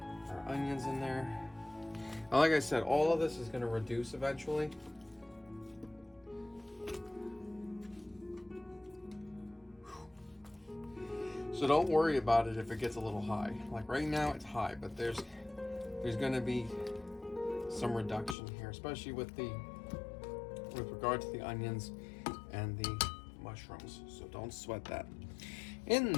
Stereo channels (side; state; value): right; drops out; at 18.4 s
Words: our onions in there. Now, like I said, all of this is going to reduce eventually. So don't worry about it if it gets a little high. Like right now it's high, but there's going to be some reduction here, especially with regard to the onions and the mushrooms. So don't sweat that. In